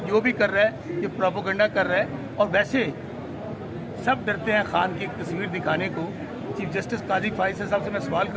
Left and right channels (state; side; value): identical; both; correlation 1.00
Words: جو بھی کر رہا ہے یہ پروپیگنڈا کر رہا ہے, اور ویسے سب ڈرتے ہیں خان کی ایک تصویر دکھانے کو. چیف جسٹس قاضی فائز صاحب سے میں سوال